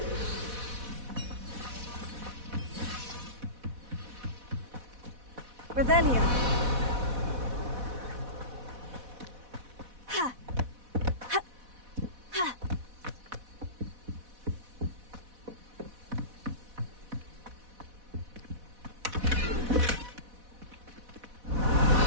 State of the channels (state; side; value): late; left; 4.1 ms